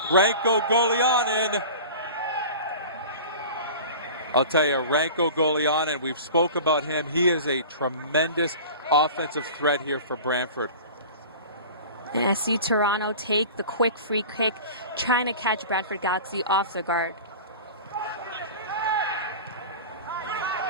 Ranko Golianin. I'll tell you, Ranko Golianin, we've spoke about him. He is a tremendous offensive threat here for Brantford. And SC Toronto take the quick free kick, trying to catch Brantford Galaxy off the guard.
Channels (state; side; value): inverted; both; correlation -0.37